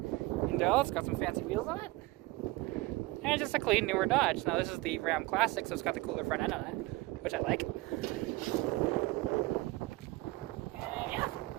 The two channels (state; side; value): quieter; left; 20.8 dB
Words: It's got some fancy wheels on it. And just a clean, newer Dodge. Now this is the Ram Classic, so it's got the cooler front end on it, which I like. And yeah,